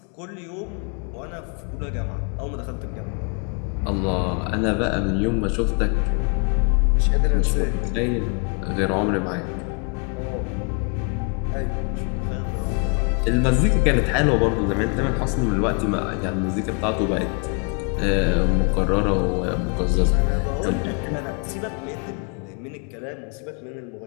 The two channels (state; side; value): quieter; right; 38.0 dB